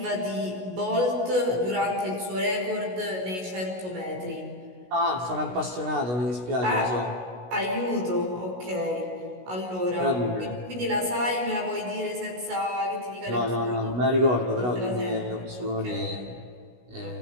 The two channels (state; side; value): late; left; 16 ms